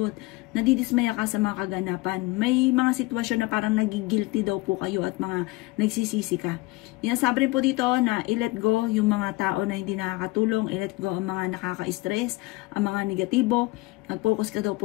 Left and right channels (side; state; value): right; quieter; 21.4 dB